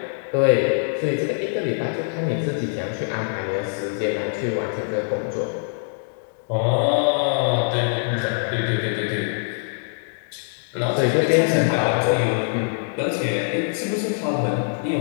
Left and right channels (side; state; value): right; silent; digital silence